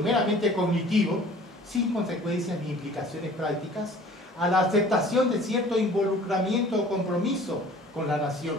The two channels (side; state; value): both; normal; correlation 0.49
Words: meramente cognitivo, sin consecuencias ni implicaciones prácticas, a la aceptación de cierto involucramiento o compromiso con la nación,